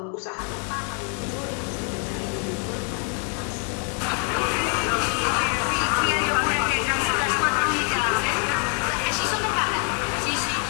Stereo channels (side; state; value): right; quieter; 39.1 dB